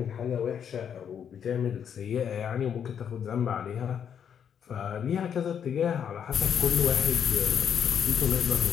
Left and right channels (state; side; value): quieter; right; 8.2 dB